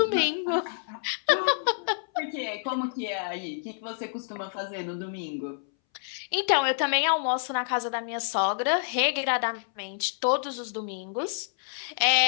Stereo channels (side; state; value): right; silent; 59 dB below the other